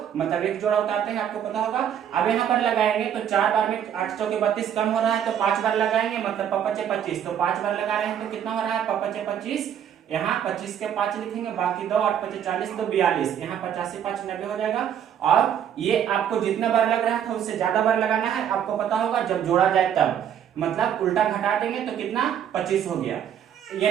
मतलब एक जोड़ा उतारते हैं, आपको पता होगा। अब यहाँ पर लगाएंगे तो 4 बार में 8 चौके 32 कम हो रहा है, तो 5 बार लगाएंगे, मतलब 5 5 25, तो 5 बार लगा रहे हैं तो कितना हो रहा है 5 5 25, यहाँ 25 के 5 लिखेंगे, बाकी 2 8 5 40, 2 42, यहाँ 85 5 90 हो जाएगा। और ये आपको जितना बार लग रहा था उससे ज्यादा बार लगाना है, आपको पता होगा जब जोड़ा जाए तब, मतलब उल्टा घटा देंगे तो कितना 25 हो गया।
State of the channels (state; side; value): quieter; left; 9.3 dB